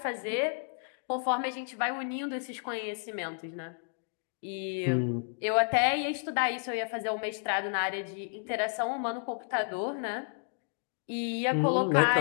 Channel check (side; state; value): right; silent; 57 dB below the other